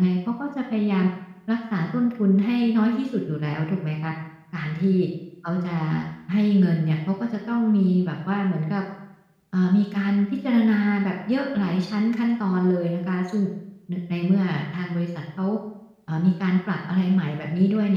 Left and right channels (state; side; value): identical; both; correlation 1.00